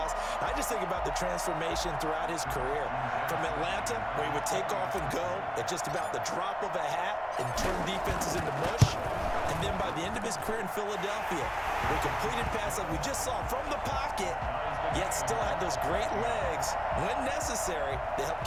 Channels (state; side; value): identical; both; correlation 1.00